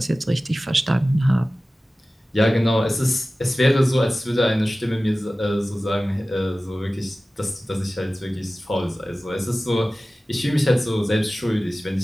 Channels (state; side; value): normal; both; correlation 0.96